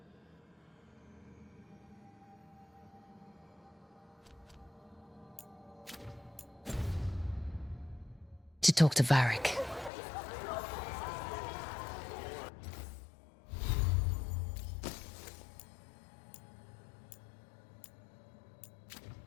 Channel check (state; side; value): drops out; right; at 9.9 s